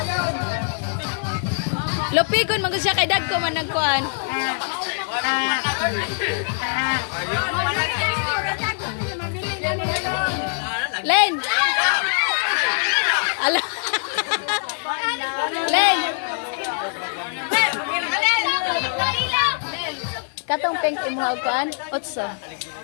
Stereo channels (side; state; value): right; silent; digital silence